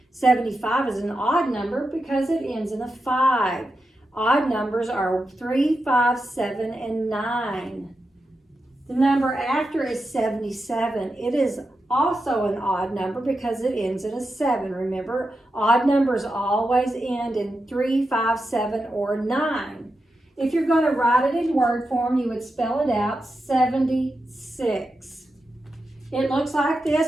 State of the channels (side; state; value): both; normal; correlation 0.88